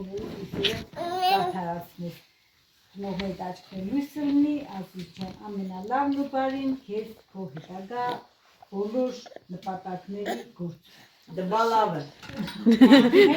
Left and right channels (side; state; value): both; identical; correlation 1.00